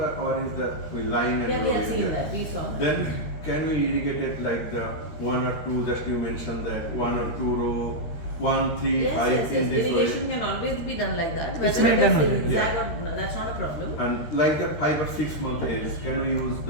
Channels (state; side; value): late; right; 13 ms